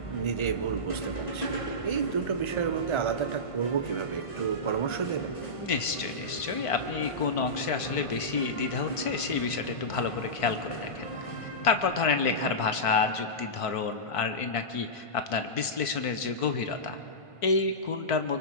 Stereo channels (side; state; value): right; late; 1.5 ms